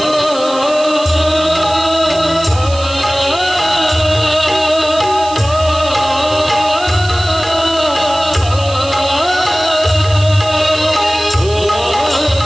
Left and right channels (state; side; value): noise; right; hiss, 14 dB below the sound